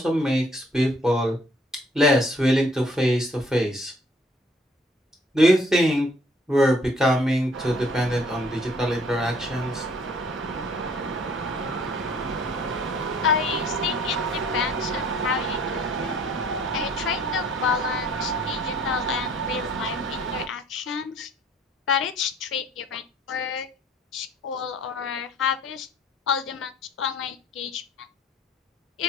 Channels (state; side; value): normal; both; correlation 0.58